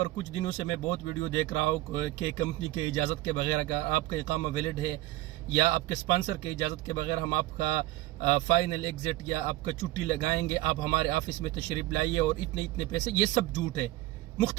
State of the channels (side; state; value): left; quieter; 17.4 dB